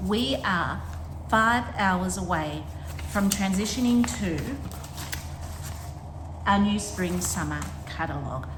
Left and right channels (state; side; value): identical; both; correlation 1.00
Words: we are 5 hours away from transitioning to our new spring-summer catalogue.